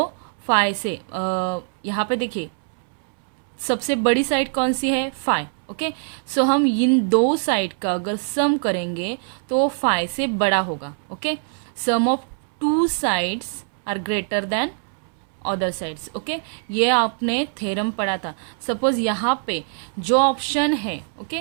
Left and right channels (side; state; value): left; silent; 63 dB below the other